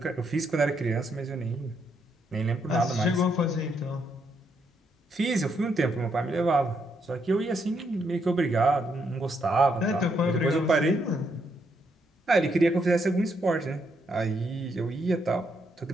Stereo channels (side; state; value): both; normal; correlation 0.76